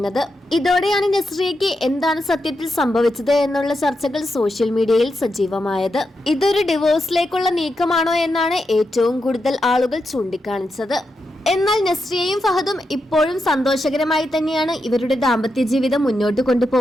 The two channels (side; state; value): both; normal; correlation 0.86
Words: ഇതോടെയാണ് നസ്രിയയ്ക്ക് എന്താണ് സത്യത്തിൽ സംഭവിച്ചത് എന്നുള്ള ചർച്ചകൾ സോഷ്യൽ മീഡിയയിൽ സജീവമായത്. ഇതൊരു ഡിവോഴ്സിലേക്കുള്ള നീക്കമാണോ എന്നാണ് ഏറ്റവും കൂടുതൽ ആളുകൾ ചൂണ്ടിക്കാണിച്ചത്. എന്നാൽ നസ്രിയയും ഫഹദും ഇപ്പോഴും സന്തോഷകരമായി തന്നെയാണ് ഇവരുടെ ദാമ്പത്യ ജീവിതം മുന്നോട്ട്